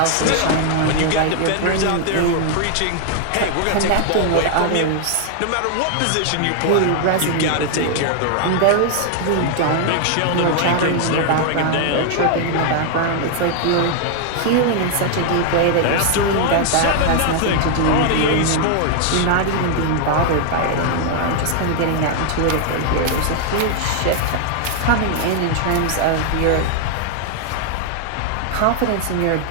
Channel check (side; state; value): both; different; correlation 0.00